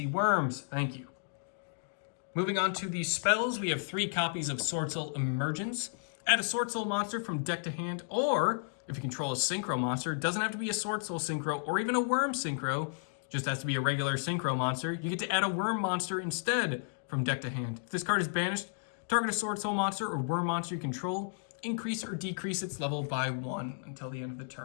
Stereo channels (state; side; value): silent; right; digital silence